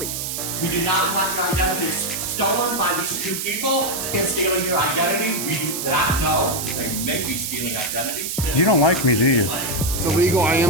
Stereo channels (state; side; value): noise; right; hiss, 4 dB below the sound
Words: We do not want your identities stolen by these two people. And stealing your identity, we do not know. They may be stealing identities. You don't like me, do you? It's illegal. I